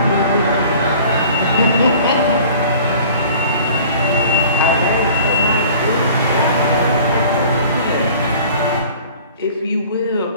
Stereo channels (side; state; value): both; inverted; correlation -0.47